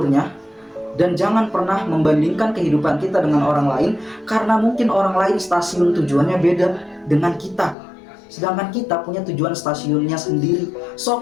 dan jangan pernah membandingkan kehidupan kita dengan orang lain, karena mungkin orang lain stasiun tujuannya beda dengan kita, sedangkan kita punya tujuan stasiunnya sendiri.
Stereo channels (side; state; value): right; drops out; at 7.8 s